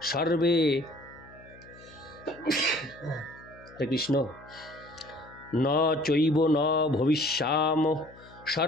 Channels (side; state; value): left; noise; hum, 22 dB below the sound